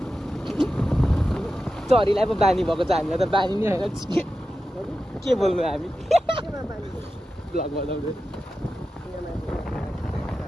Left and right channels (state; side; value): normal; both; correlation 0.92